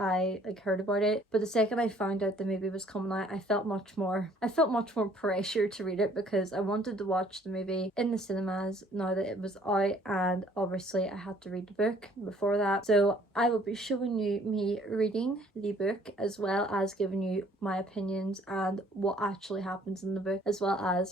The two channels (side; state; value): both; normal; correlation 0.59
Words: heard about it, but the second I found out the movie was coming out, I felt much more pressure to read it because I wanted to watch the movie in the cinemas now that it was out, and obviously I had to read the book before that. So I will be showing you me reading the book as well as giving you my opinions and what actually happens in the book, as well